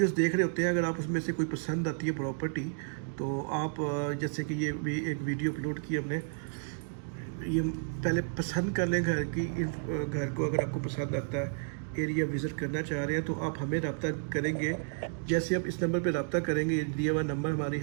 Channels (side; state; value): left; silent; digital silence